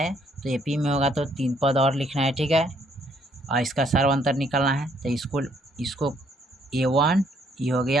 तो एपी में होगा तो 3 पद और लिखना है। ठीक है, और इसका सर्व अंतर निकालना है। तो इसको A1 ये हो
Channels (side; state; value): both; normal; correlation 0.68